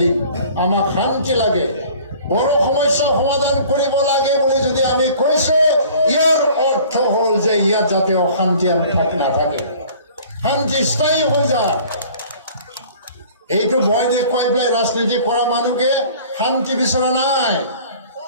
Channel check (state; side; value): inverted; both; correlation -0.49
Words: আমাক শান্তি লাগে বড় সমস্যা সমাধান কৰিব লাগে বুলি যদি আমি কৈছো ইয়াৰ অৰ্থ হ'ল যে ইয়াত যাতে অশান্তি নাথাকে শান্তি স্থায়ী হৈ যায় এইটো ভয় দেখুৱাই পেলাই ৰাজনীতি কৰা মানুহকে শান্তি বিচৰা নাই